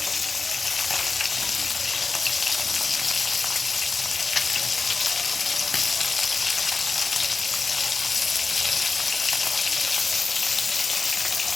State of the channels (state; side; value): quieter; right; 4.1 dB